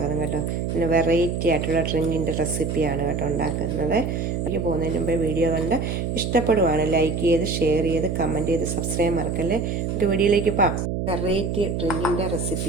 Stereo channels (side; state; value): right; noise; hum, 2 dB below the sound